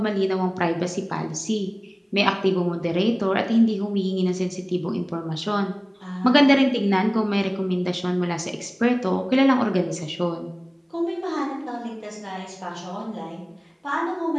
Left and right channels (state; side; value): identical; both; correlation 1.00